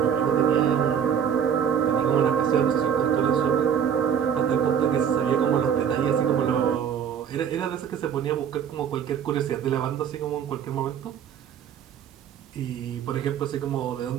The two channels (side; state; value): left; quieter; 8.2 dB